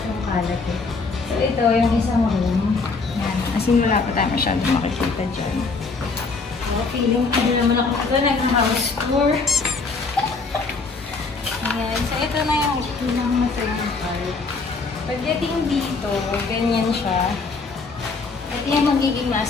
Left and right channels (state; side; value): quieter; right; 4.2 dB